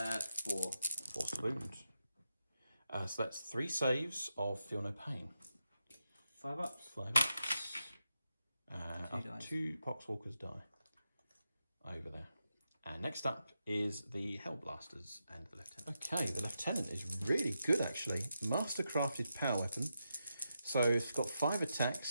4. Force to wound. So that's 3 saves of Feel No Pain. 5 ups. 5 ups. 2 2 Poxwalkers die. Over there. And next up is the Hellblasters and the Lieutenant. Okay, the Lieutenant is really good actually. Mastercrafted power weapon. So it's got 5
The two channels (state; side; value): inverted; both; correlation -0.86